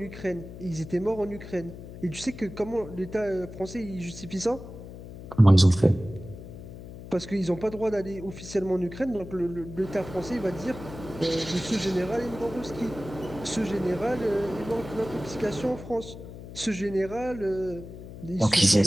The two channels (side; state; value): left; noise; hum, 13 dB below the sound